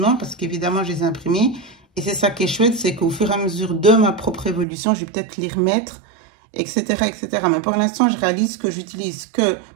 parce qu'évidemment, je les ai imprimés. Et c'est ça qui est chouette, c'est qu'au fur et à mesure de ma propre évolution, je vais peut-être les remettre, etc., etc. Mais pour l'instant, je réalise que j'utilise que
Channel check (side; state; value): left; drops out; at 4.7 s